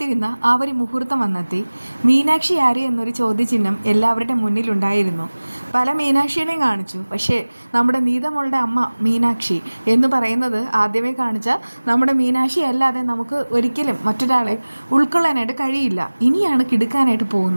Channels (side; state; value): both; inverted; correlation -1.00